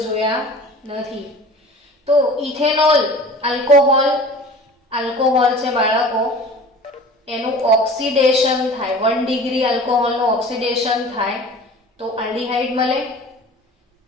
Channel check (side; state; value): both; normal; correlation 0.42